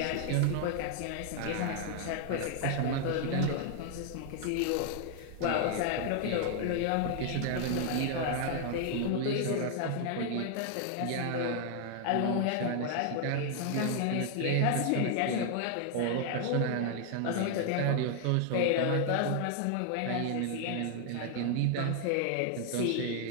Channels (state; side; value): different; both; correlation 0.00